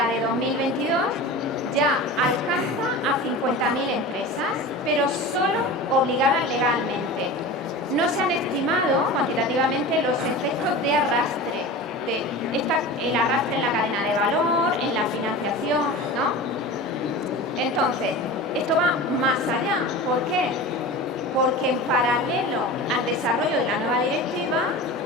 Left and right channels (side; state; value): both; normal; correlation 0.32